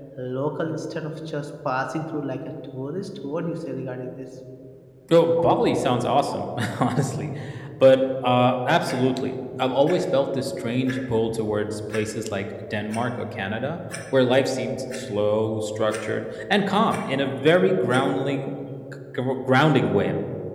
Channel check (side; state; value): both; identical; correlation 1.00